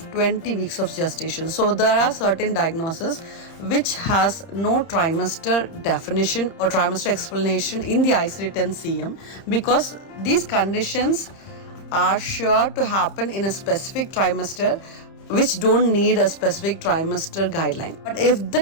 20 weeks of gestation. So there are certain diagnoses which has no trimester definition or trimester explanation in the ICD-10-CM because these conditions are sure to happen in a specific trimester which don't need a specific trimester guideline. But if the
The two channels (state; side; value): late; right; 30 ms